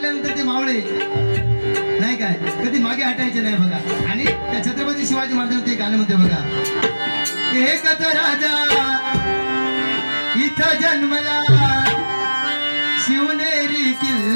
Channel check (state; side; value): inverted; both; correlation -1.00